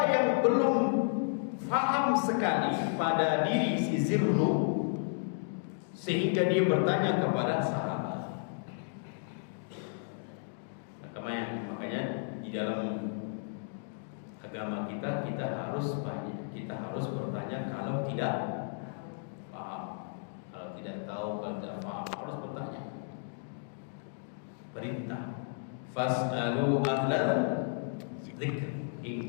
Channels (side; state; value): right; silent; digital silence